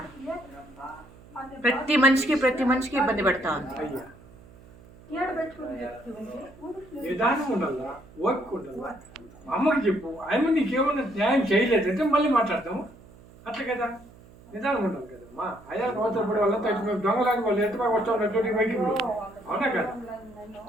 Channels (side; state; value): right; noise; hum, 23 dB below the sound